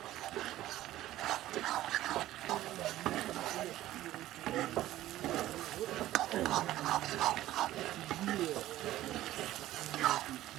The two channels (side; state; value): left; quieter; 14.7 dB